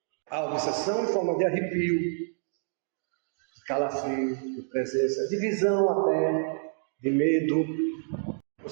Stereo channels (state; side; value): silent; left; digital silence